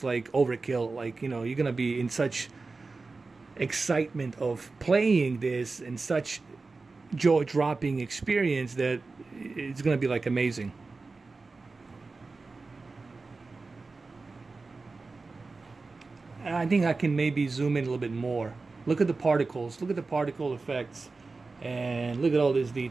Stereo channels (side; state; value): left; quieter; 3.9 dB